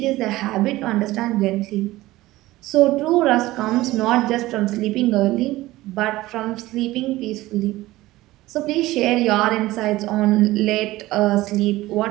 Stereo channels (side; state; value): left; quieter; 17.6 dB